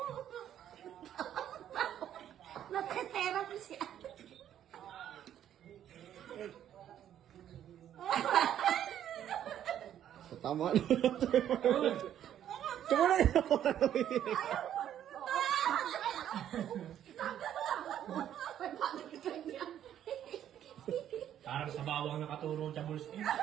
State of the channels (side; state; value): left; quieter; 10.6 dB